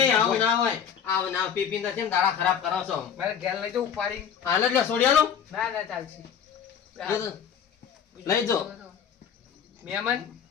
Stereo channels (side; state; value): right; quieter; 8.0 dB